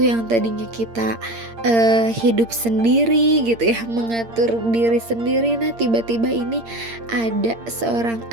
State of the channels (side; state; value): left; late; 8.7 ms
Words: tadinya kita hidup sendiri gitu ya, mengatur diri sendiri. Nah tiba-tiba ini ada seorang